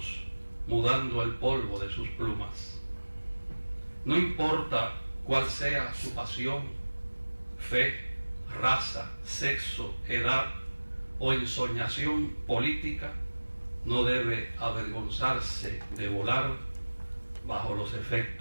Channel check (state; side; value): inverted; both; correlation -1.00